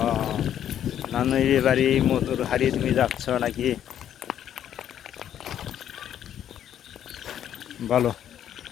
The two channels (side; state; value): right; quieter; 10.3 dB